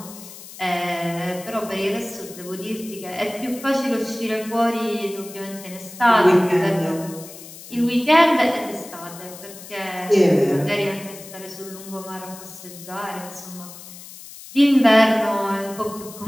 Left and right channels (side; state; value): left; noise; hiss, 16 dB below the sound